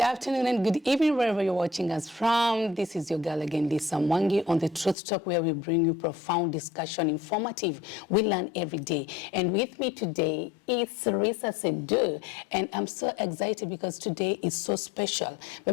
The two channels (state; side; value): drops out; right; at 5.0 s